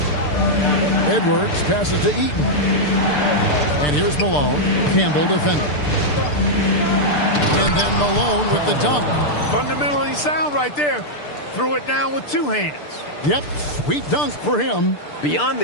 Edwards passes to Eaton. And here's Malone. Campbell defending. And then Malone with the dunk. Fundamentally sound right there. Threw it down with 2 hands. Yep, sweet dunk for him. Beyond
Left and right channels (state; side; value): late; right; 6.8 ms